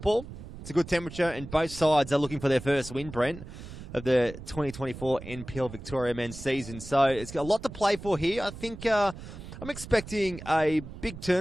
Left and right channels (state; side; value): noise; right; rumble, 13 dB below the sound